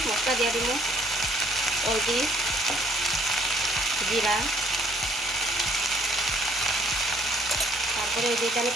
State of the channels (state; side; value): normal; both; correlation 0.63